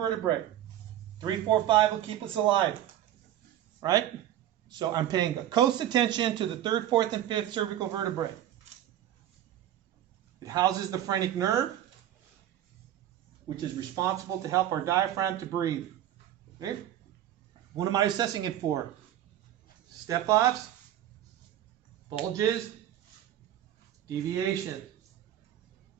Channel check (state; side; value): quieter; left; 12.0 dB